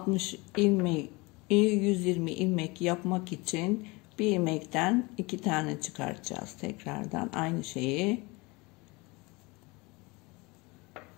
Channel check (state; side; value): quieter; right; 25.1 dB